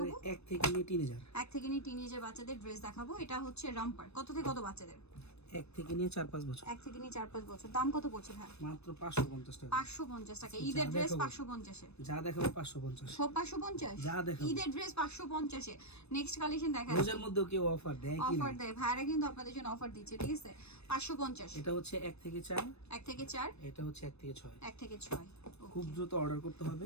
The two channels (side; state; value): right; late; 0.79 ms